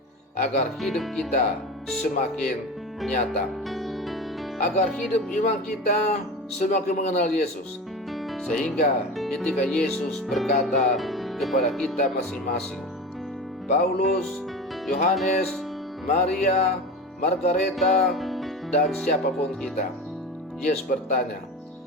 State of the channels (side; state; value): both; normal; correlation 0.29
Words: agar hidup kita semakin nyata, agar hidup iman kita semakin mengenal Yesus, sehingga ketika Yesus berkata kepada kita masing-masing, Paulus, Yohanes, Maria, Margareta, dan siapapun kita, Yesus bertanya,